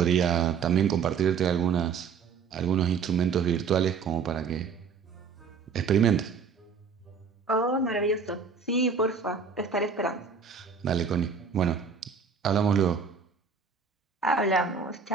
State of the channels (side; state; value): left; quieter; 5.8 dB